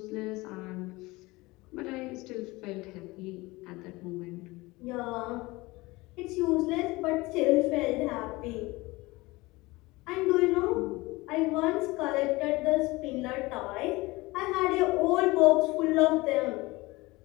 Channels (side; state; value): right; quieter; 21.9 dB